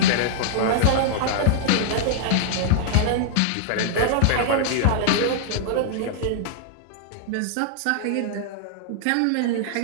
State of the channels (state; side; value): different; both; correlation -0.01